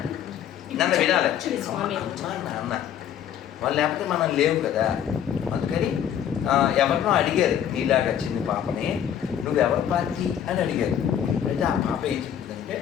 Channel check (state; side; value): quieter; right; 9.6 dB